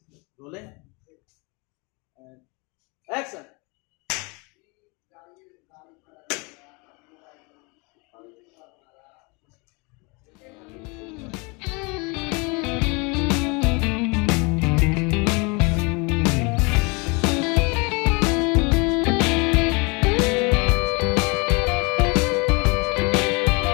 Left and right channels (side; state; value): right; quieter; 29.6 dB